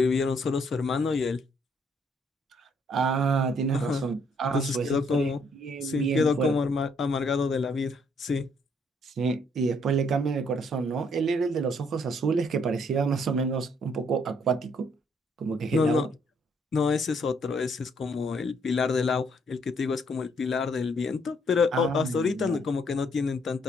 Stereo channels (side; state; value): both; normal; correlation 0.68